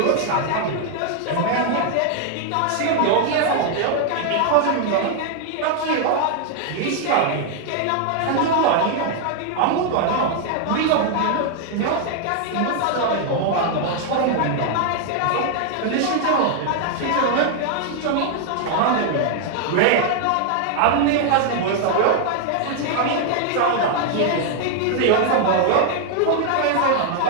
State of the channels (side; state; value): both; different; correlation 0.00